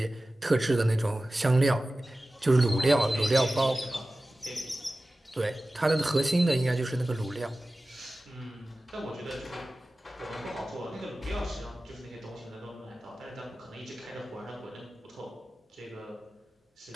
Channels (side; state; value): both; normal; correlation 0.96